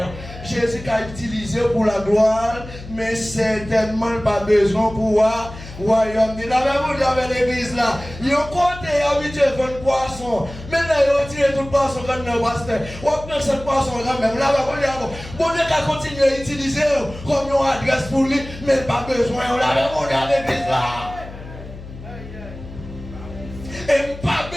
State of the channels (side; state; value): left; noise; hum, 14 dB below the sound